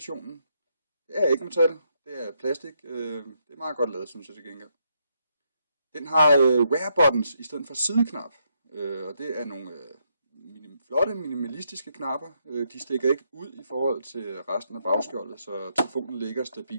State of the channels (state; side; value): inverted; both; correlation -0.76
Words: Det er ikke metal, det er plastik. Det er meget godt lavet, synes jeg til gengæld. Den har rare buttons i stedet for sideknap, og det er nogle flotte minimalistiske knapper. De stikker ikke ud i forhold til resten af bagskjoldet, så telefonen ligger